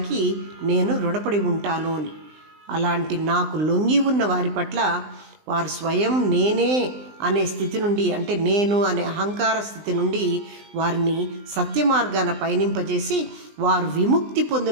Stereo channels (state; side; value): late; left; 20 ms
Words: నేను రుణపడి ఉంటాను అని. అలాంటి నాకు లొంగి ఉన్న వారి పట్ల వారు స్వయం నేనే అనే స్థితి నుండి, అంటే నేను అనే అహంకార స్థితి నుండి వారిని సత్య మార్గాన పయనింపజేసి వారు విముక్తి